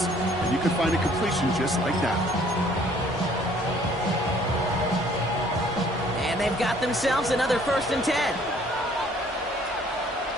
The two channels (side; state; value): both; normal; correlation 0.58